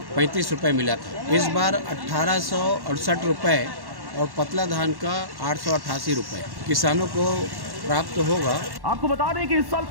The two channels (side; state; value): left; late; 1.1 ms